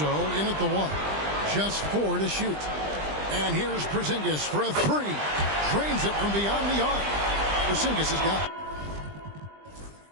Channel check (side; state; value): left; late; 20 ms